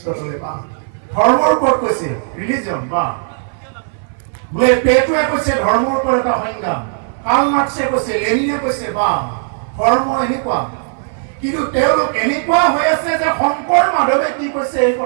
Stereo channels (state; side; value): silent; left; 58 dB below the other